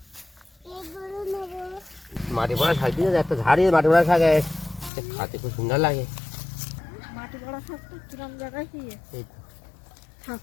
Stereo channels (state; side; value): drops out; right; at 4.9 s